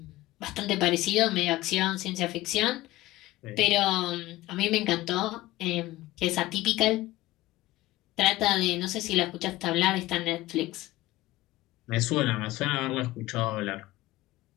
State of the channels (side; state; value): right; quieter; 17.3 dB